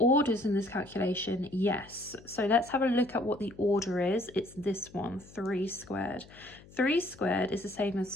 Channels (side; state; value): left; noise; hum, 22 dB below the sound